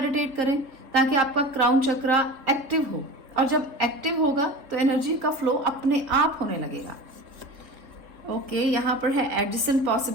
करें, ताकि आपका क्राउन चक्रा एक्टिव हो। और जब एक्टिव होगा तो एनर्जी का फ्लो अपने आप होने लगेगा। ओके, यहाँ पर है एडजेसेंट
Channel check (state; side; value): late; left; 3.9 ms